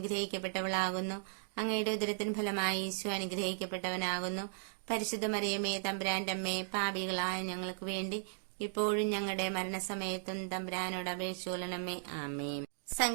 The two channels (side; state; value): left; silent; digital silence